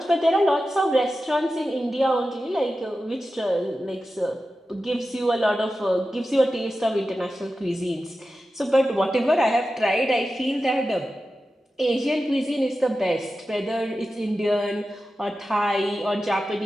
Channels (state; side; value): normal; both; correlation 0.93